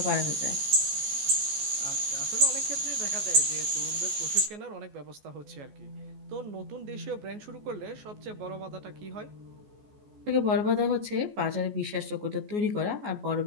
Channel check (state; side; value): late; left; 14 ms